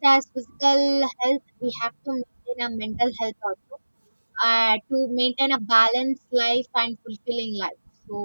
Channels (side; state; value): both; inverted; correlation -1.00